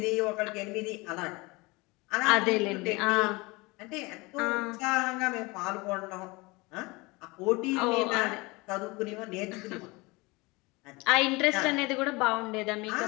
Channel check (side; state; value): right; quieter; 24.5 dB